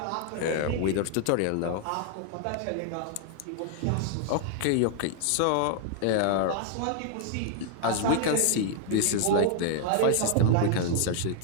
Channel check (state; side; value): different; both; correlation 0.00